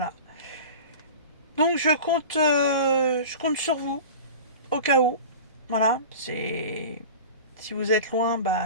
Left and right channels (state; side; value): inverted; both; correlation -0.34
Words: Donc je compte sur vous, au cas où, voilà, c'est... Si vous êtes loin,